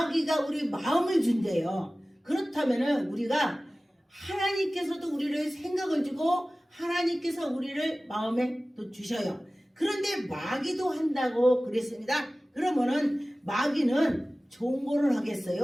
우리 마음을 준대요. 그렇다면 우리가 하나님께서도 우리를 생각을 주고 하나님께서 우리를 마음에 또 주셔요. 그런데 마귀도 한다고 그랬습니다. 그러면은 마귀는 좋은 거를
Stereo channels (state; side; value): normal; both; correlation 0.97